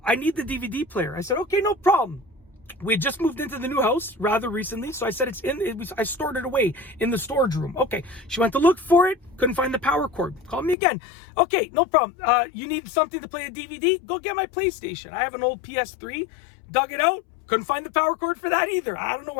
I need the DVD player. I said, okay, no problem. We had just moved into the new house rather recently, so I said I stored it away in the storage room. Okay, she went to look for it, couldn't find the power cord. Called me again. Okay, no problem. You need something to play a DVD? Go get my PlayStation. I have an old PS3. Dug it out. Couldn't find the power cord for that either. I don't know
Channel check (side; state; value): right; drops out; at 10.8 s